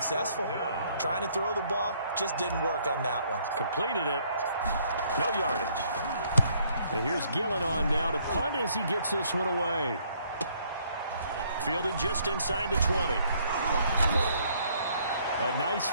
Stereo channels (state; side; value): inverted; both; correlation -0.66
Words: Trying to throw the ball, just didn't work on that one. Completed it. No yardage. And here's Gillen on now to punt as he gets this one away. Fielded just inside the 20. A nice